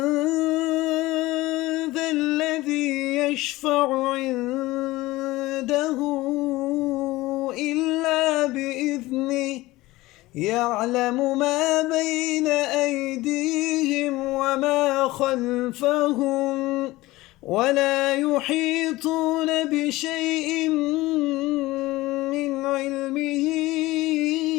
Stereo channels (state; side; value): quieter; right; 19.0 dB